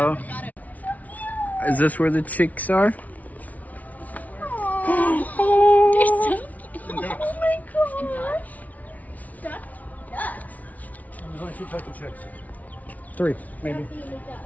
Is this where the chicks are? Oh, they're so cute. Oh my gosh. Ducks. There's only 2 types of chicks. 3, maybe.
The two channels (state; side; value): late; right; 0.072 ms